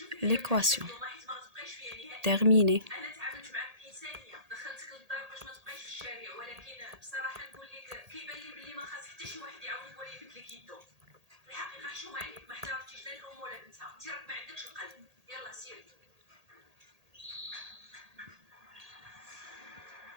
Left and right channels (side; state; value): left; late; 1.8 ms